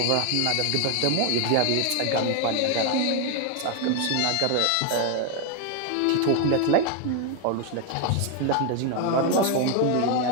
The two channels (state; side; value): different; both; correlation 0.01